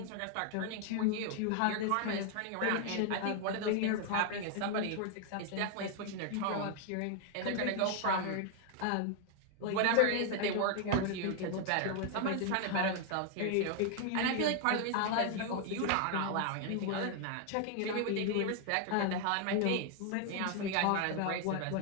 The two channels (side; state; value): both; different; correlation 0.00